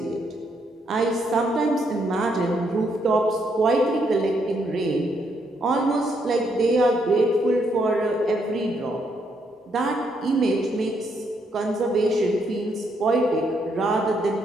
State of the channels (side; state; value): both; normal; correlation 0.75